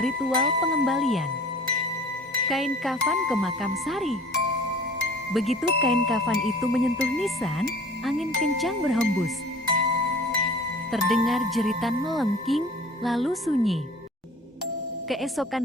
ritual pengembalian kain kafan ke makam Sari. Begitu kain kafan itu menyentuh nisan, angin kencang berhembus. Terdengar jeritan melengking, lalu sunyi.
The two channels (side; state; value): both; normal; correlation 0.46